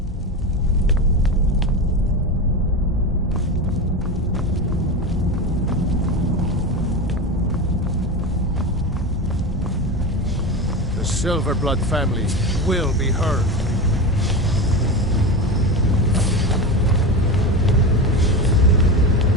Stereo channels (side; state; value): both; normal; correlation 0.22